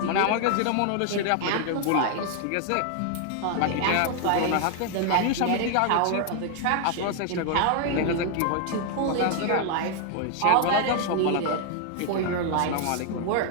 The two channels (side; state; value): both; different; correlation 0.00